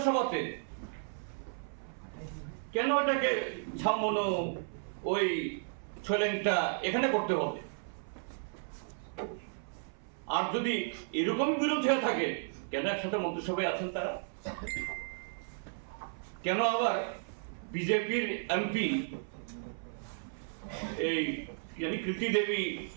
কেন এটাকে ছামনো ওই ছোলেংটা এখানে করতে হবে? আর যদি এরকম বিরোধ হয়ে থাকে, কেন একসাথে মন্ত্রিসভায় আছেন তারা? কেন আবার বিজেপির এমপি এই কৃতি দেবী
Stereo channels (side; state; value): left; silent; 55 dB below the other